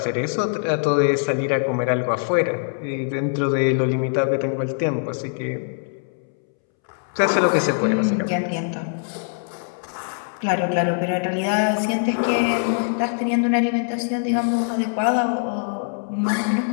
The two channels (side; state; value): right; silent; 64 dB below the other